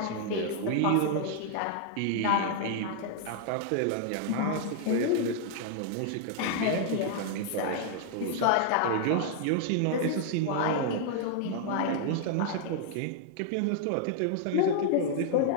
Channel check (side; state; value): both; different; correlation 0.00